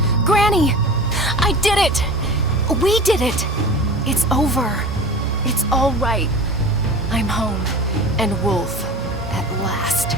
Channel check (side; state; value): both; normal; correlation 0.35